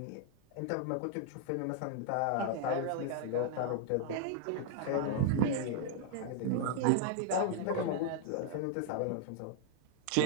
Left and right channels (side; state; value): both; different; correlation 0.00